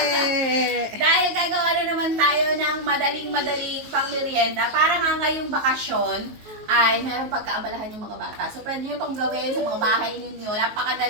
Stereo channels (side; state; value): left; late; 19 ms